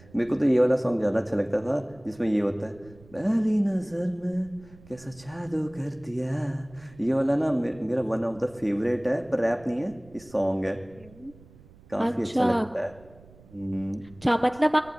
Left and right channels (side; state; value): right; noise; rumble, 23 dB below the sound